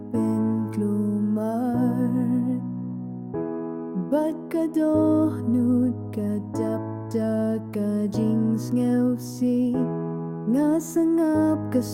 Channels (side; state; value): both; identical; correlation 1.00